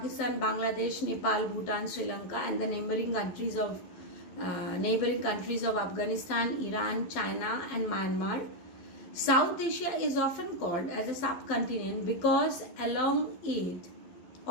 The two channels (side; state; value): right; late; 12 ms